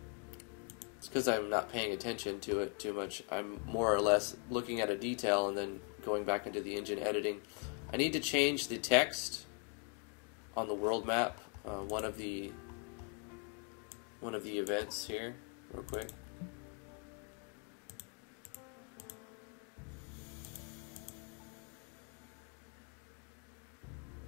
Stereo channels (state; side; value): quieter; right; 36.1 dB